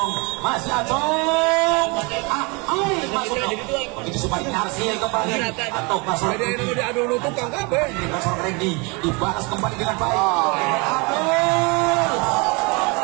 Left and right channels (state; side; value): quieter; left; 29.0 dB